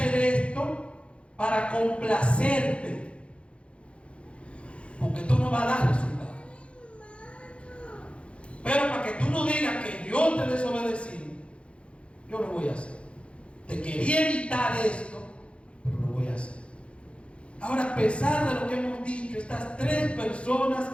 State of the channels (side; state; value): right; late; 0.060 ms